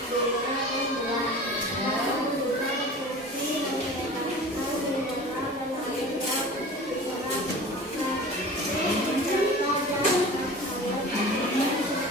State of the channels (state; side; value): normal; both; correlation 0.38